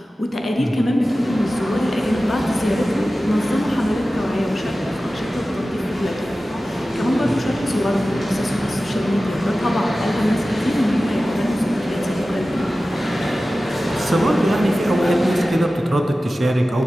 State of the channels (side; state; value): both; normal; correlation 0.95